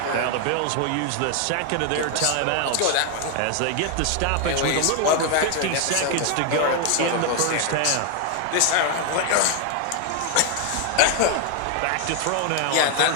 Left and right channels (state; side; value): different; both; correlation 0.00